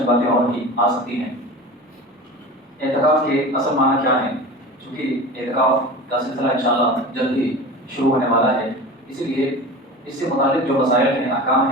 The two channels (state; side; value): normal; both; correlation 0.33